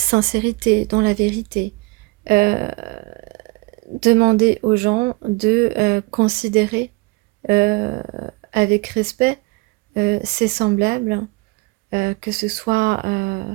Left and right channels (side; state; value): left; quieter; 24.8 dB